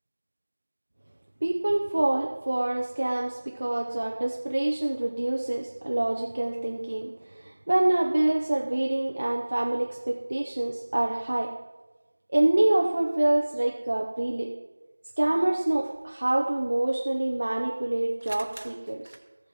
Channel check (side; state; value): both; inverted; correlation -1.00